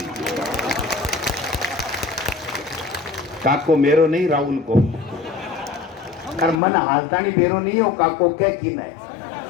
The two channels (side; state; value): right; drops out; at 6.6 s